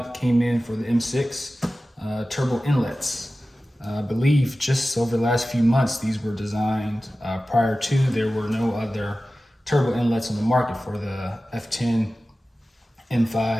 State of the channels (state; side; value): normal; both; correlation 0.95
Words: came in for the M6 turbo inlets. I believe just over the last few months these were designed. Prior to, there were no other turbo inlets on the market for the F10,